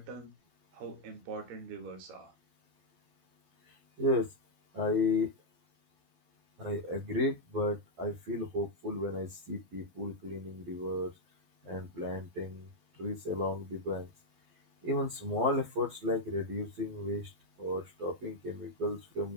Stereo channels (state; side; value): late; left; 12 ms